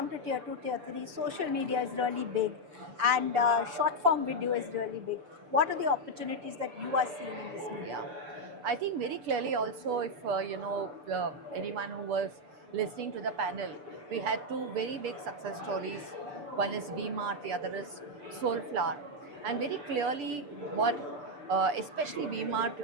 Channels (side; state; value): left; late; 6.9 ms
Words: to tier 2, tier 3, social media is really big and short form video is really big. What are the opportunities that you are seeing in this medium? Yeah. I think very clearly also, if anyone who was listening to the panel, we had two very big success stories. One is VMart, the other is Soulflower. And very clearly, what especially VMart,